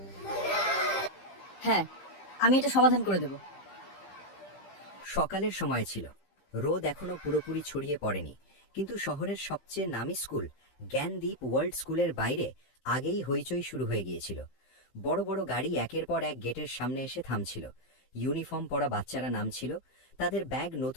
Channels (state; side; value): late; right; 15 ms